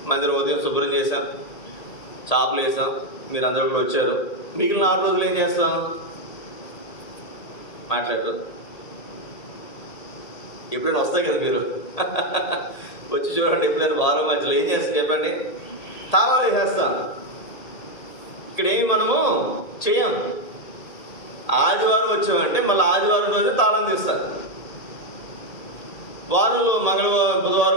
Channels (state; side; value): late; right; 1.8 ms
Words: మందిరం ఉదయం శుభ్రం చేశాం, చాపలు వేసాం, మీరు అందరూ కూడా వచ్చారు. మిగిలిన 6 రోజులు ఏం చేస్తాం? మాట్లాడరు. ఎప్పుడైనా వస్తాయి కదా మీరు వచ్చి చూడండి. ఎప్పుడైనా వారం మధ్యలో ఏం చేస్తాం చెప్పండి? తాళాలు వేసేస్తాం. ఇక్కడ ఏమి మనము చేయం. ఆదివారం వచ్చామంటే మళ్ళీ ఆదివారం రోజు తాళం తీస్తారు. వారంలో మంగళవారం,